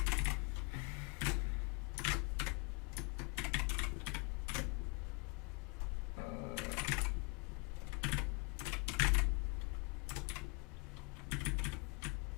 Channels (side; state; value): right; quieter; 28.8 dB